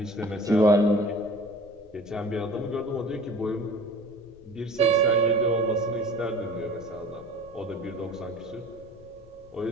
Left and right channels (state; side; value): noise; left; rumble, 25 dB below the sound